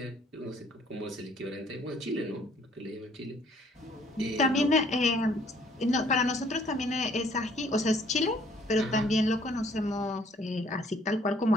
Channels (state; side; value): normal; both; correlation 0.61